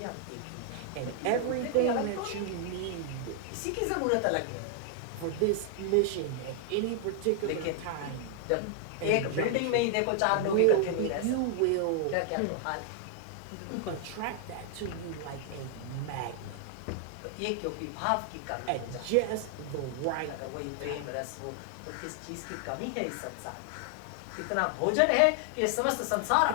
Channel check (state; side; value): different; both; correlation 0.00